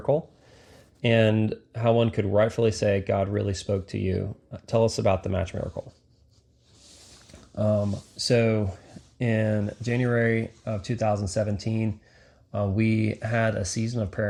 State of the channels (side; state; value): both; identical; correlation 1.00